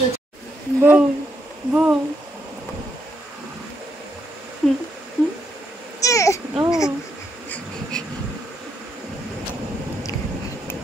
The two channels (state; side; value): normal; both; correlation 0.78